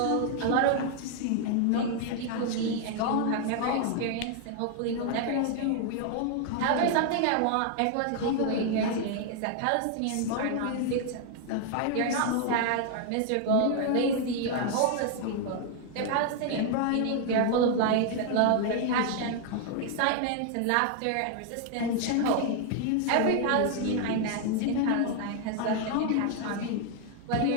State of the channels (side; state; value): both; different; correlation 0.00